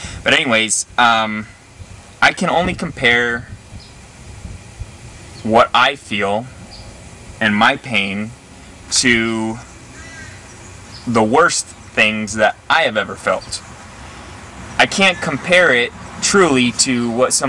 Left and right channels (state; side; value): identical; both; correlation 1.00